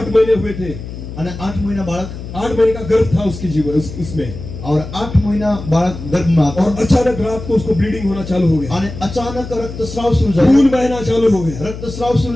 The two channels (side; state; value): left; noise; hum, 10 dB below the sound